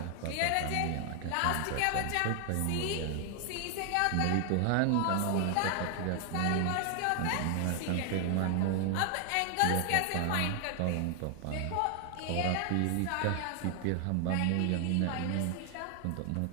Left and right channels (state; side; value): different; both; correlation 0.00